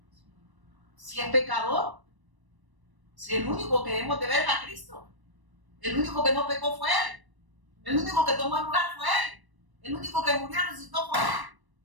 si es pecador, si el único que debemos de ver es a Cristo. El único que no pecó fue Él. El único que tomó el lugar fue Él. El único que murió y resucitó fue Él.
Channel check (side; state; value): left; late; 1.0 ms